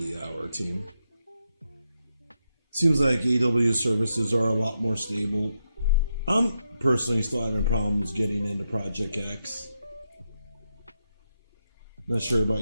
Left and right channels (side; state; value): both; inverted; correlation -0.84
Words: hour, team. Seems like AW services are a lot more stable. I'm personally still having problems getting into Project X. Not sure about